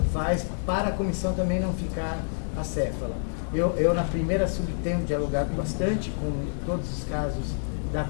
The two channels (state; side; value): silent; right; digital silence